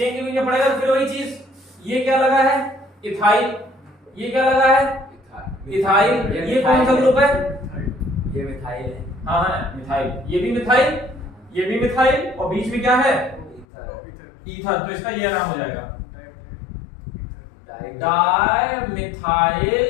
के बीच में पड़ेगा तो फिर वही चीज, ये क्या लगा है? इथाइल। ये क्या लगा है? इथाइल। ये कौन सा ग्रुप है? ये मिथाइल है। हाँ हाँ मिथाइल। ये भी मिथाइल, ये भी मिथाइल, और बीच में क्या है? ईथर। तो इसका ये नाम हो जाएगा di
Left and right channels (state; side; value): drops out; right; at 13.7 s